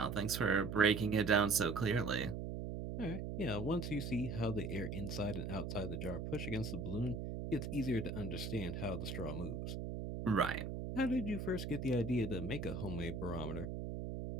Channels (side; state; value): right; noise; hum, 4 dB below the sound